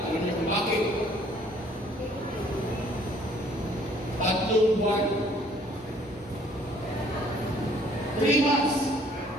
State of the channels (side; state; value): both; normal; correlation 0.59